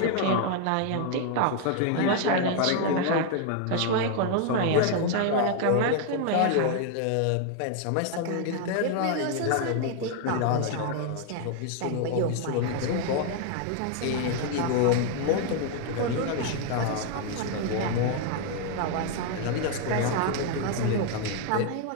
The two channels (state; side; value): different; both; correlation 0.00